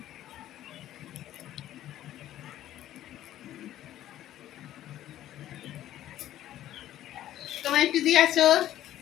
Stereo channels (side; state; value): right; quieter; 12.9 dB